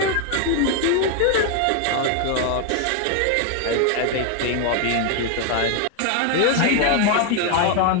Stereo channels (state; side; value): different; both; correlation 0.01